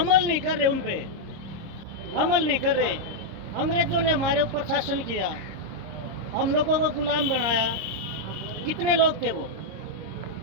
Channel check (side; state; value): left; late; 26 ms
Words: नहीं कर रहे, उन पे अमल नहीं कर रहे। अंग्रेजों ने हमारे ऊपर शासन किया, हम लोगों को गुलाम बनाया। कितने लोग थे वो,